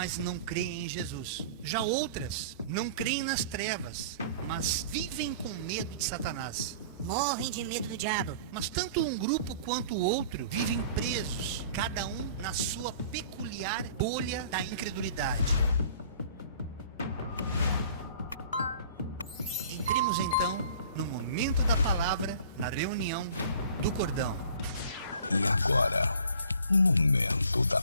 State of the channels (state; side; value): inverted; both; correlation -0.47